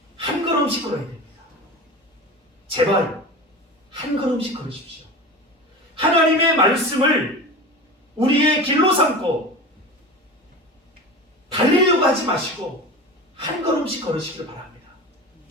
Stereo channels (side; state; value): both; normal; correlation 0.30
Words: 한 걸음씩 걸어야 됩니다. 제발 한 걸음씩 걸으십시오. 하나님의 말씀을 우리의 길로 삼고 달리려고 하지 마시고 한 걸음씩 걸으시기를 바랍니다.